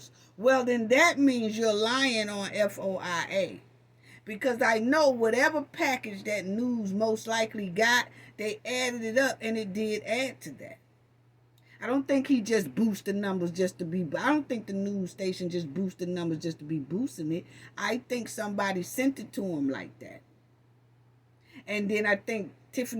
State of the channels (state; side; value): identical; both; correlation 1.00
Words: Well, then that means you're lying on FOIA. Because I know whatever package that news most likely got, they added it up and it did add to that. I don't think he just boosted numbers just to be. I don't think the news station just boosted numbers just to be boosting it. I think somebody sent it to him like that. And then I think